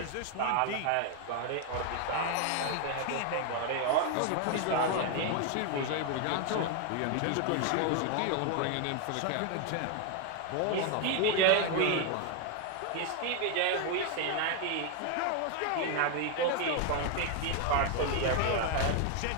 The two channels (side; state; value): both; different; correlation 0.01